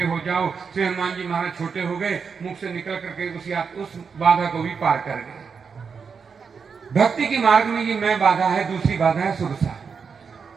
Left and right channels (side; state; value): left; quieter; 5.8 dB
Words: हो जाओ। श्री हनुमान जी महाराज छोटे हो गए, मुख से निकल करके उस बाधा को भी पार कर गए। भक्ति के मार्ग में ये मैं बाधा है, दूसरी बाधा है सुरसा,